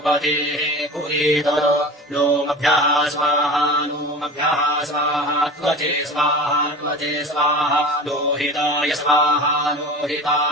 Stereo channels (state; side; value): normal; both; correlation 0.35